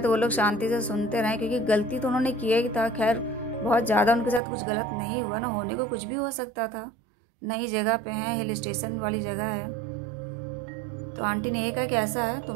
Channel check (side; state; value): left; drops out; at 4.4 s